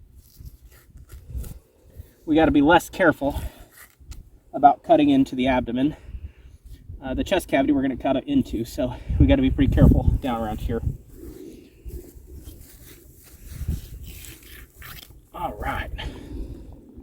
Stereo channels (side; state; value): both; identical; correlation 1.00